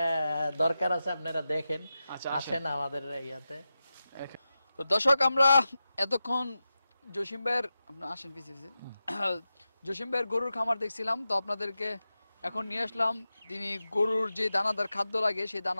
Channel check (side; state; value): both; inverted; correlation -0.92